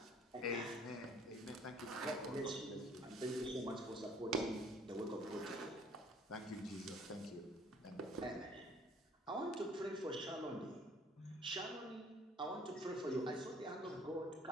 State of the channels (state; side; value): normal; both; correlation 0.56